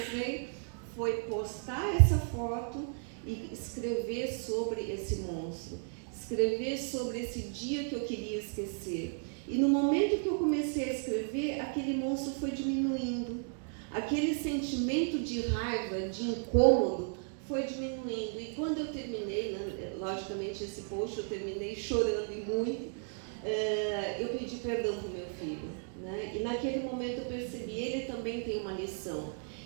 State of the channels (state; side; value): silent; left; 55 dB below the other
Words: foi postar essa foto e escrever sobre esse monstro, escrever sobre esse dia que eu queria esquecer. E no momento que eu comecei a escrever, aquele monstro foi diminuindo, aquele sentimento de raiva, de incômodo, foi diminuindo. E quando eu terminei, né, logicamente esse post eu terminei chorando e muito, eu pedi perdão para o meu filho, né? E naquele momento eu percebi, ele também tem uma lição,